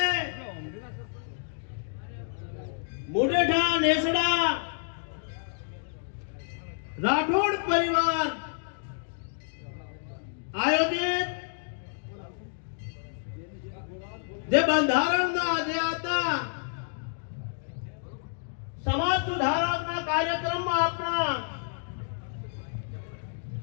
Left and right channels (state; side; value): silent; right; digital silence